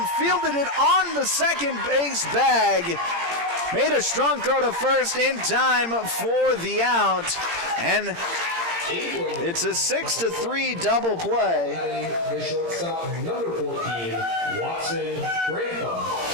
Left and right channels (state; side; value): late; left; 17 ms